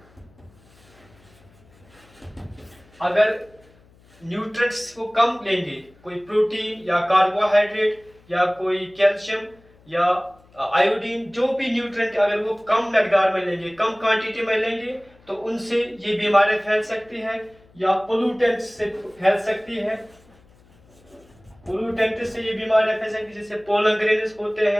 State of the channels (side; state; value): left; noise; hum, 29 dB below the sound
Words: अगर न्यूट्रिएंट्स को कम लेंगे, कोई प्रोटीन या कार्बोहाइड्रेट या कोई कैल्शियम या आयोडीन, जो भी न्यूट्रिएंट अगर वो कम मकदार में लेंगे, कम क्वांटिटी में लेंगे, तो उनसे ये बीमारी फैल सकती है। या पोल्यूटेंट से फैल सकती है, पोल्यूटेंट से ये बीमारियां फैल सकती है, जैसे पोलन ग्रेन्स होते